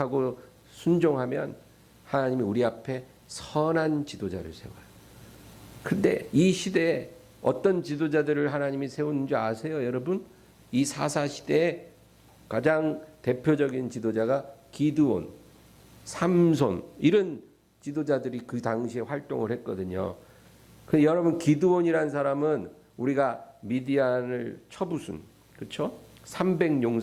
순종하면 하나님이 우리 앞에 선한 지도자를 세워요. 근데 이 시대에 어떤 지도자들을 하나님이 세우는 줄 아세요, 여러분? 이 사사 시대에 가장 대표적인 지도자가 기드온, 삼손 이런 지도자들이 그 당시에 활동을 했거든요. 근데 여러분 기드온이라는 사람은 우리가 미디안을 쳐부순, 그렇죠?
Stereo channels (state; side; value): identical; both; correlation 1.00